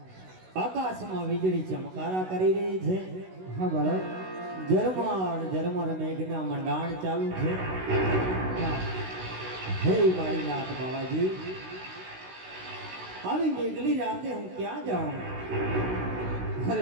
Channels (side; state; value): left; late; 16 ms